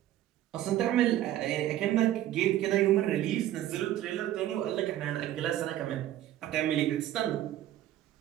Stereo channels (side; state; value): left; quieter; 13.1 dB